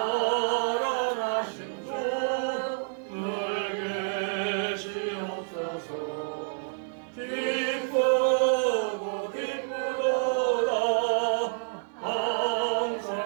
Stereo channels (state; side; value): silent; left; digital silence